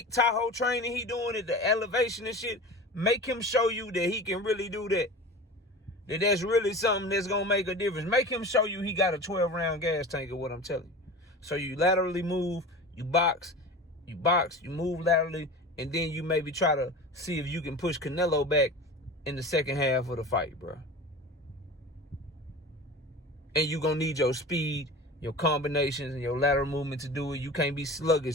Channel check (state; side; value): normal; both; correlation 0.34